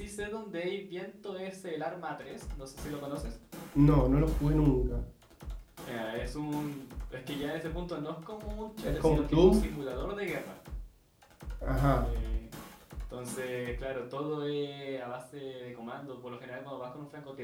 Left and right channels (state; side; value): identical; both; correlation 1.00